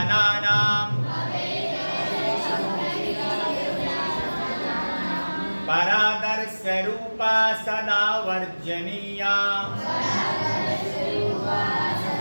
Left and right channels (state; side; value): inverted; both; correlation -1.00